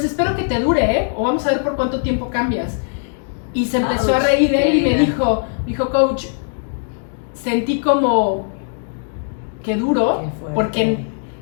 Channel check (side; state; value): right; silent; digital silence